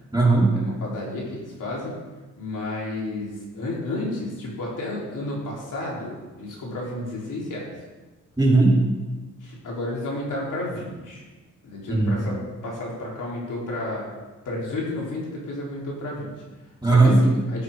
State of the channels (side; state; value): both; normal; correlation 0.73